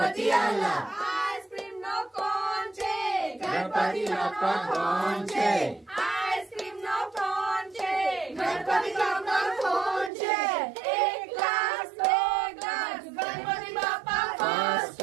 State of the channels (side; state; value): left; drops out; at 10.1 s